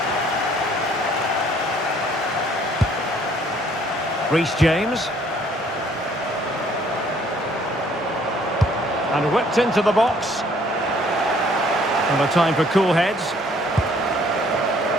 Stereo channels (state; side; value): normal; both; correlation 0.61